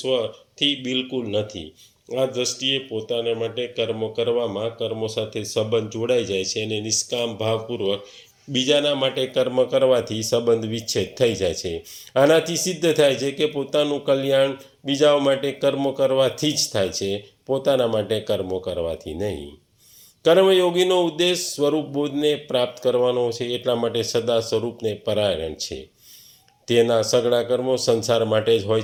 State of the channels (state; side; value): identical; both; correlation 1.00